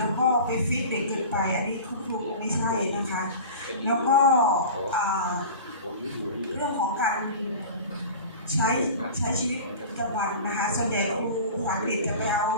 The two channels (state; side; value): inverted; both; correlation -0.36